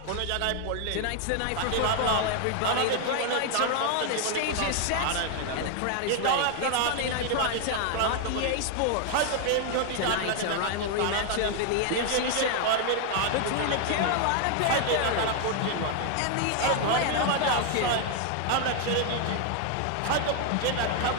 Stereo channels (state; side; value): different; both; correlation 0.00